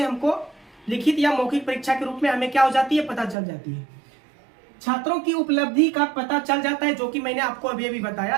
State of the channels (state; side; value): drops out; left; at 3.4 s